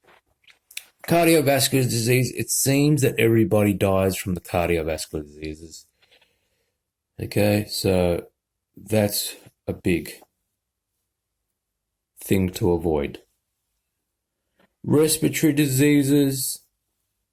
Cardiovascular disease, it seems that everybody dies from the cardiovascular diseases. Okay, so that's a big thing to avoid. Respiratory diseases,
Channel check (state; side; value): identical; both; correlation 1.00